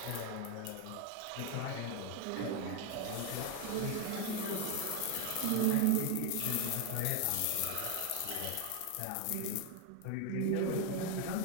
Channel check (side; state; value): both; different; correlation 0.01